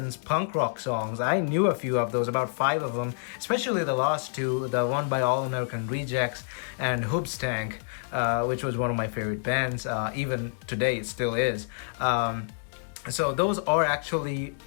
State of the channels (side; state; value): right; silent; digital silence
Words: punk rock songs. I knew a few of those, about 5 of them, especially the last two, the one by All American Rejects and Hoobstank. Which was one of my favorite bands. Even today, it still is. So those are actually